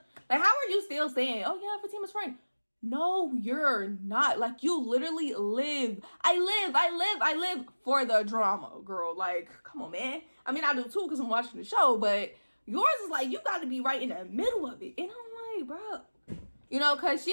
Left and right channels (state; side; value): inverted; both; correlation -1.00